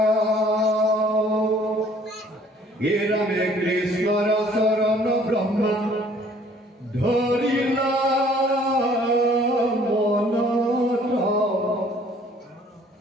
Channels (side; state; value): both; normal; correlation 0.57